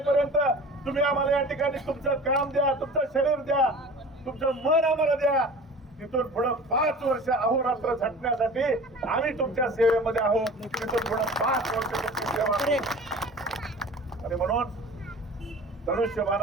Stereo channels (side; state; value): both; normal; correlation 0.40